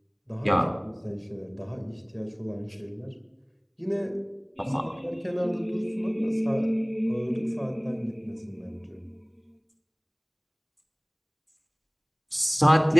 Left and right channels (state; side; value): identical; both; correlation 1.00